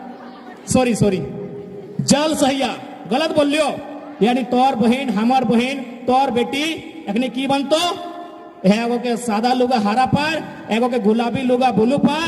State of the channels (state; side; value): identical; both; correlation 1.00